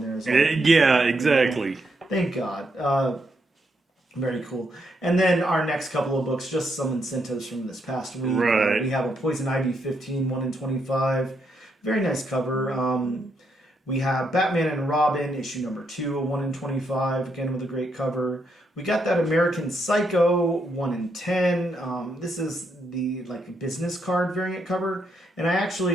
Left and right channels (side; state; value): both; normal; correlation 0.78